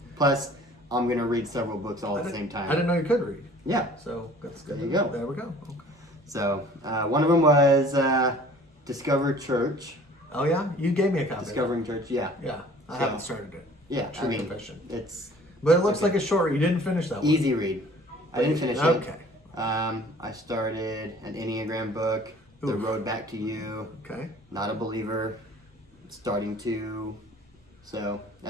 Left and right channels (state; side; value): normal; both; correlation 0.50